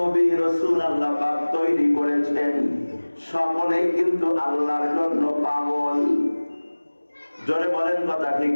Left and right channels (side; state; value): both; inverted; correlation -1.00